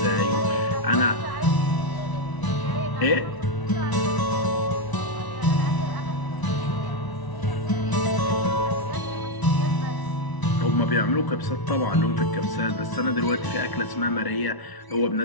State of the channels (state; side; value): late; right; 1.0 ms